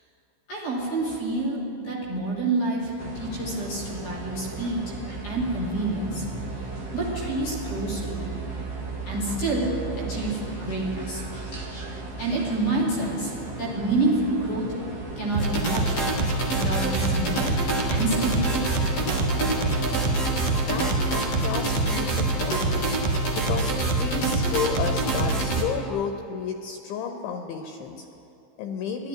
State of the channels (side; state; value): right; late; 15 ms